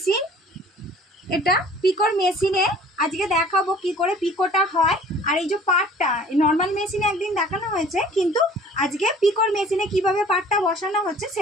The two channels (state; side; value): normal; both; correlation 0.50